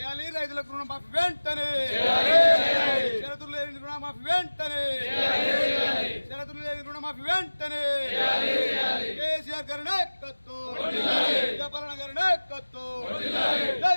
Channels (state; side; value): inverted; both; correlation -1.00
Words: రైతులకు రుణమాఫీ వెంటనే, షరతులు లేని రుణమాఫీ వెంటనే, షరతులు లేని రుణమాఫీ వెంటనే. కేసీఆర్ గారి నాయకత్వం, జగన్ గారి నాయకత్వం, జై